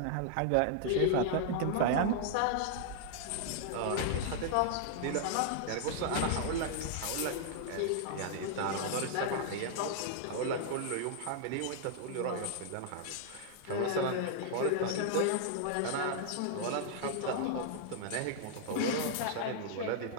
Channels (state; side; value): different; both; correlation -0.01